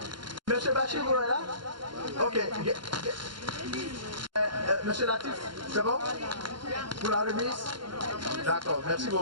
Monsieur Bachir, vous êtes là? Ok. Monsieur Latif, c'est bon? Pour la remise? D'accord, merci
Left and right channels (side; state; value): left; late; 0.72 ms